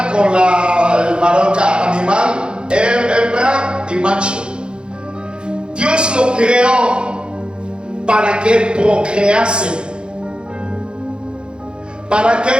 con el varón animal, hembra y macho. Dios lo creó para que procrease. Para que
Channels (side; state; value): left; late; 0.052 ms